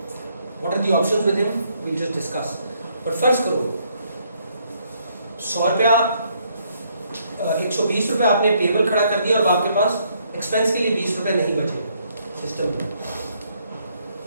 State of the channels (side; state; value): both; inverted; correlation -0.70